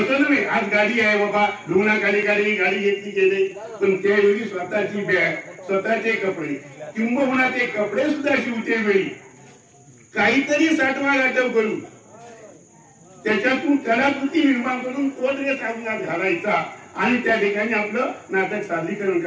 नव्हे आज गाडी आहे बाबा लुगणाखाली गाडी घेतली गेले पण त्यावेळी स्वतःची बॅग, स्वतःचे कपडे किंबहुना ते कपडे सुद्धा शिवते वेळी काहीतरी साठवा गाठव करून त्याच्यातून कलाकृती निर्माण करून तो ड्रेस अंगात घालायचा आणि त्या ठिकाणी आपलं नाटक सादरीकरण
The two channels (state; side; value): identical; both; correlation 1.00